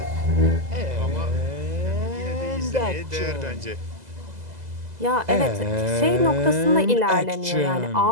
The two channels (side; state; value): left; late; 2.0 ms